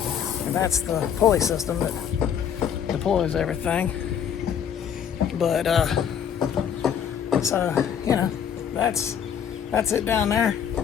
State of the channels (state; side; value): quieter; right; 8.4 dB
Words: And that's the pulley system that deploys everything. But so that's it down there.